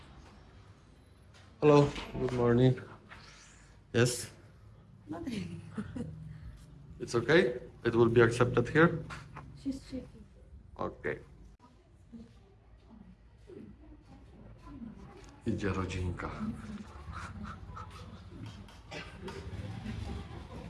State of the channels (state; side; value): identical; both; correlation 1.00